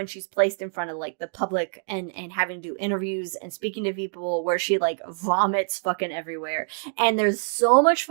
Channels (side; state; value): left; silent; digital silence